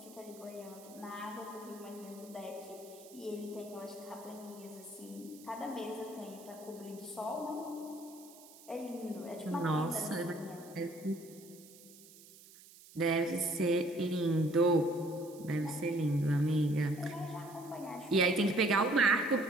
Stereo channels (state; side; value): noise; right; hiss, 21 dB below the sound